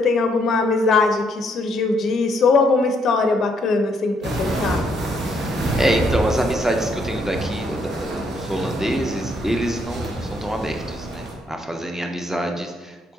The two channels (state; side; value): normal; both; correlation 0.72